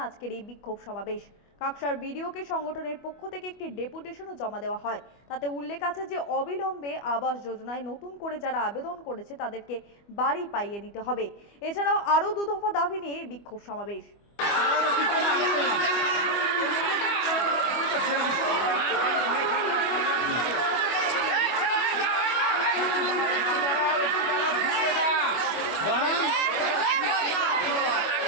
আজকের এই বিক্ষোভ সমাবেশ। কাকসার বিডিওকে সংগঠনের পক্ষ থেকে একটি ডেপুটেশনও জমা দেওয়া হয়। তাতে উল্লেখ আছে যে অবিলম্বে আবাস যোজনায় নতুন করে যারা আবেদন করেছে তাদেরকে বাড়ি পাইয়ে দিতে হবে। এছাড়াও আরও দু দফা দাবি নিয়ে বিক্ষোভ সমাবেশ।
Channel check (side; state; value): right; late; 25 ms